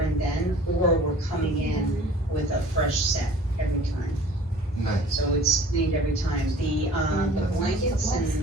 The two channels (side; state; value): both; normal; correlation 0.48